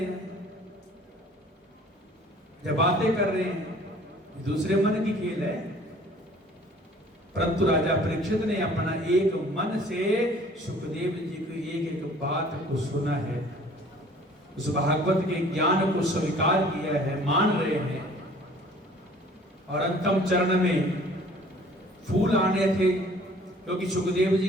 हैं, जब बातें कर रहे हैं, दूसरे मन की खेल है। परंतु राजा परीक्षित ने अपना एक मन से सुखदेव जी की एक एक बात को सुना है, उस भागवत के ज्ञान को स्वीकार किया है, मान रहे हैं। और अंतिम चरण में फूल आने थे, क्योंकि सुखदेव जी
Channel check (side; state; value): both; normal; correlation 0.52